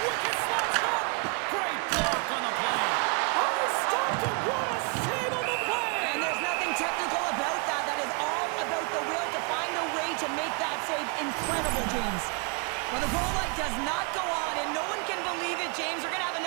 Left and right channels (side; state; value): left; quieter; 34.8 dB